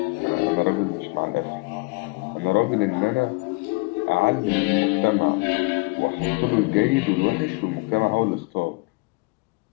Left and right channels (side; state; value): right; quieter; 27.3 dB